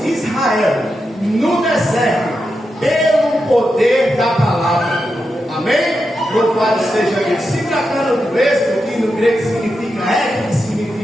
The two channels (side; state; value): both; normal; correlation 0.87